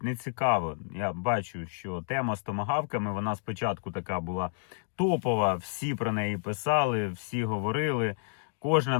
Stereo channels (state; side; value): silent; right; digital silence